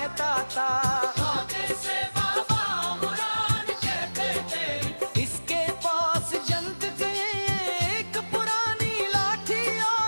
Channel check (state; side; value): inverted; both; correlation -1.00